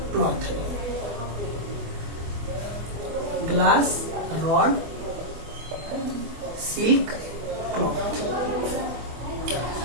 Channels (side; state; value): left; late; 24 ms